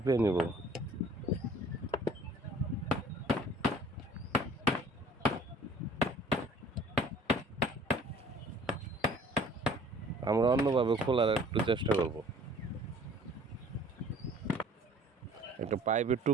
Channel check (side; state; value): both; normal; correlation 0.52